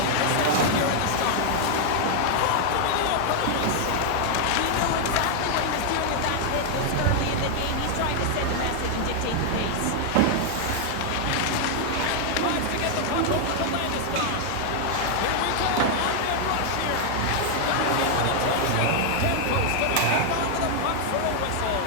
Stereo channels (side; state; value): both; different; correlation 0.00